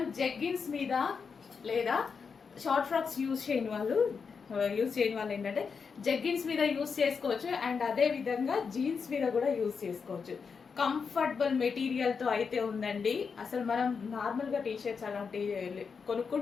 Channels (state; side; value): quieter; right; 5.7 dB